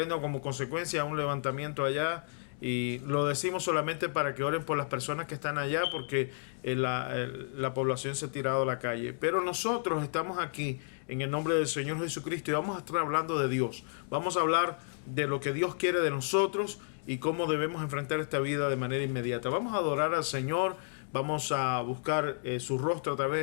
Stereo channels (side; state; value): right; silent; digital silence